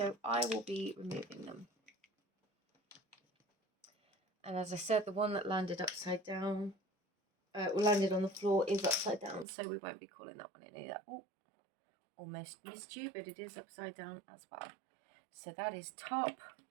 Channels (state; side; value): drops out; left; at 9.5 s